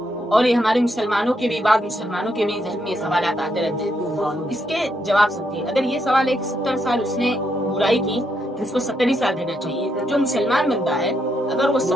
اور یہ ہمارے مسلمانوں کے بھی بعض مسلمانوں کے بھی ذہن میں یہ سوالات آتے رہتے ہیں۔ اس کے جواب سمجھیے، اگر یہ سوال ہے کہ 70 سال اس نے برائی کی تو اس کو 70 ہی سال دینا چاہیے۔ جو مسلمان بندہ ہے اگر وہ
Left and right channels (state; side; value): normal; both; correlation 0.78